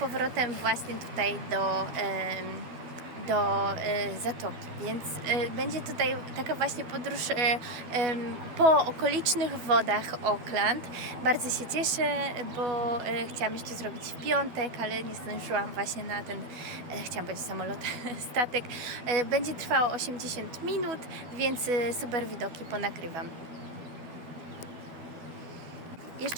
właśnie tutaj do zatoki, więc będzie tutaj taka właśnie podróż po okolicznych wodach Auckland. Bardzo się cieszę, bo chciałam jeszcze zrobić w piątek, ale nie zdążyłam właśnie na ten, chciałam powiedzieć samolot, statek. Będzie trwało 80 minut, więc super widoki ponagrywam.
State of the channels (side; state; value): left; late; 12 ms